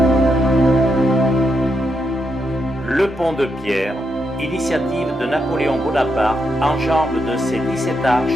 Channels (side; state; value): both; normal; correlation 0.82